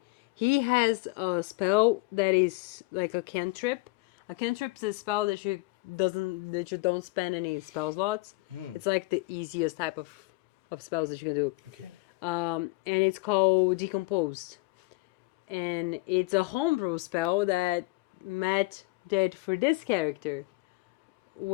He has a spell that is like a cantrip. A cantrip is a spell that you don't spend any spell slots. It's like the easiest type of spells that you can do. Okay. And it's called Decomposed. And it's a homebrew spell that Matt did for this character,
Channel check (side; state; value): right; quieter; 23.5 dB